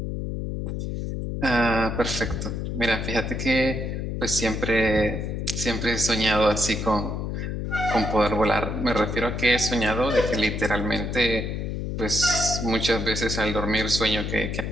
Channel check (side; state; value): left; noise; hum, 3 dB below the sound